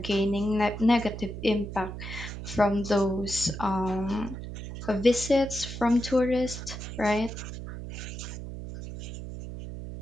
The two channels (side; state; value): right; noise; hum, 8 dB below the sound